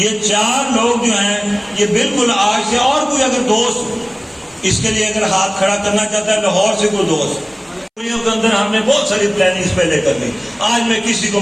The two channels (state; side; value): identical; both; correlation 1.00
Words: 4 لوگ جو ہیں یہ بالکل آج سے, اور کوئی اگر دوست اس کے لیے اگر ہاتھ کھڑا کرنا چاہتا ہے, لاہور سے کوئی دوست, کے اندر ہم نے بہت ساری پلاننگ پہلے کر لی. آج میں کسی کو